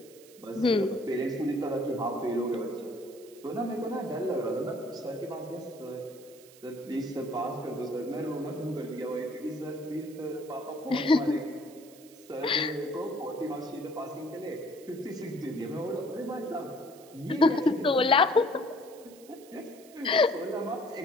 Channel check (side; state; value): right; noise; hiss, 22 dB below the sound